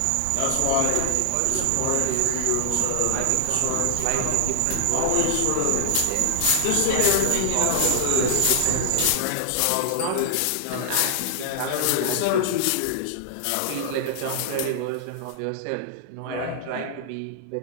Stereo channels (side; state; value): both; different; correlation 0.00